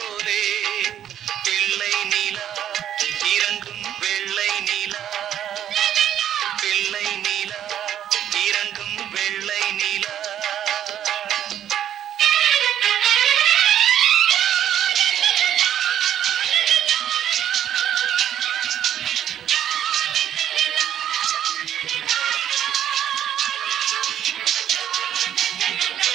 பிள்ளை நிலா இரண்டும் வெள்ளை நிலா, பிள்ளை நிலா இரண்டும் வெள்ளை நிலா.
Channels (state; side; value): quieter; left; 10.4 dB